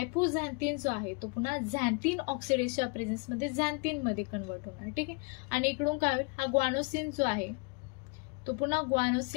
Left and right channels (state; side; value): quieter; right; 32.5 dB